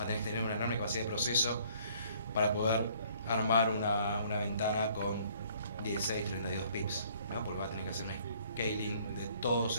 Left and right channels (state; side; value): inverted; both; correlation -0.60